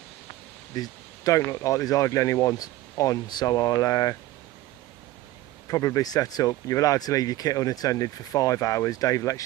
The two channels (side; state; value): left; quieter; 16.3 dB